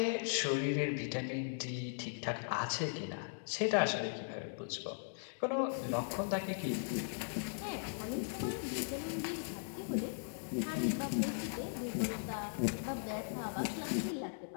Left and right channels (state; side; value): silent; right; digital silence